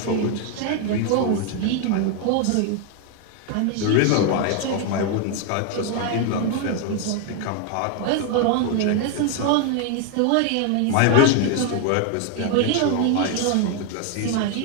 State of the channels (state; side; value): different; both; correlation 0.01